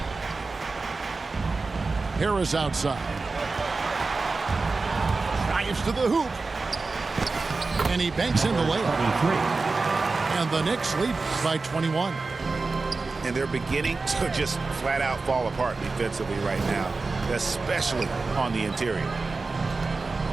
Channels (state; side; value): quieter; left; 3.9 dB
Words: Harris outside. Drives to the hoop. And he banks in the layup. And the Knicks lead by 21. And they're beginning to just flat out fall apart defensively right now, especially on the interior.